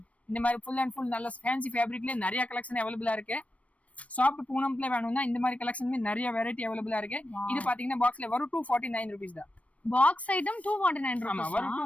இந்த மாதிரி ஃபுல் அண்ட் ஃபுல் நல்ல ஃபேன்சி ஃபேப்ரிக்ல நிறைய கலெக்ஷன் அவைலபிளா இருக்கு. சாஃப்ட் பூனம்ல வேணும்னா இந்த மாதிரி கலெக்ஷனுமே நிறைய வெரைட்டி அவைலபிளா இருக்கு. இது பாத்தீங்கன்னா பாக்ஸ்ல வரும் 249 rupees தான். பாக்ஸ் ஐட்டம் 249 ஆமா, வரும்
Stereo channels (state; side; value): late; right; 0.065 ms